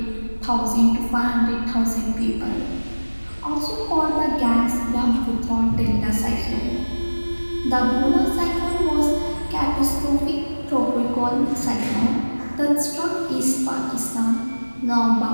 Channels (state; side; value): inverted; both; correlation -1.00